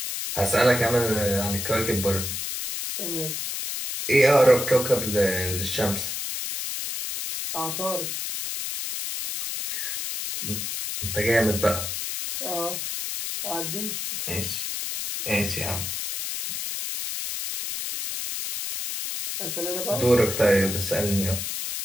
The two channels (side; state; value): left; noise; hiss, 4 dB below the sound